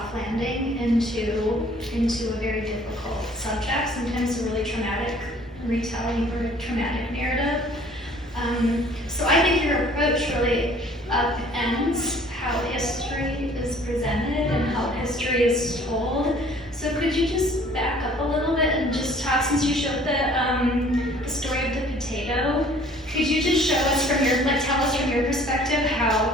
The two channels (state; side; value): normal; both; correlation 0.54